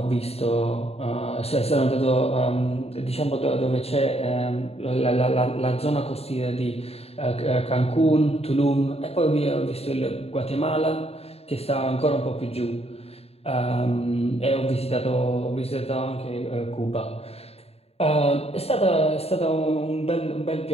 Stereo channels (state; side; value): late; right; 0.29 ms